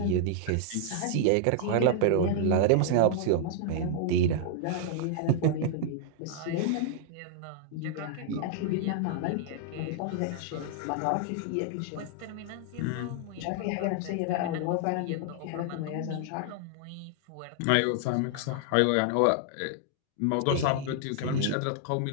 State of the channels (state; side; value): different; both; correlation -0.01